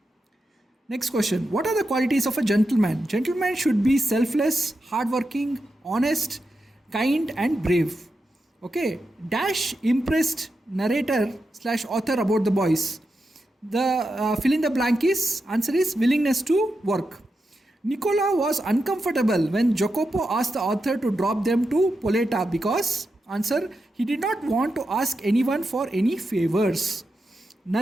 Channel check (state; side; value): normal; both; correlation 0.88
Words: Next question. What are the qualities of a gentleman? Gentleman should be selfless, hardworking, honest, kind and brave. Okay. Dash impressed narrator / author about the boys. The fill in the blank answer is willingness to work. Nicola was uncomfortable when Jacopo asked the author to drop them to Poleta because, answer, he did not want to ask anyone for any favors.